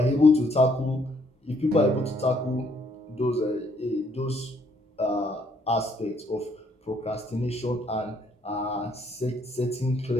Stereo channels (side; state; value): both; normal; correlation 0.68